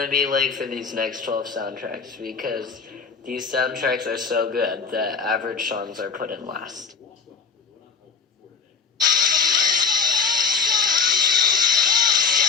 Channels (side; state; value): right; quieter; 5.4 dB